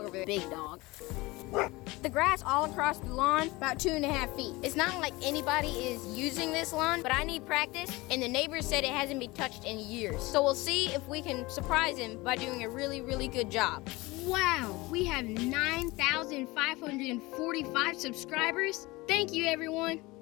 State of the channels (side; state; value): right; quieter; 21.9 dB